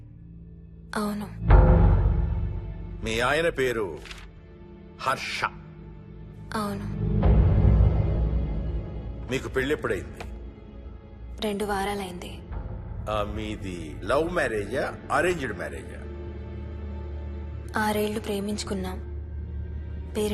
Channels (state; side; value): identical; both; correlation 1.00